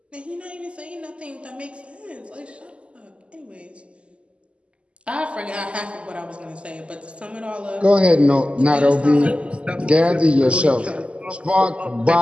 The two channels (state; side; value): late; left; 0.057 ms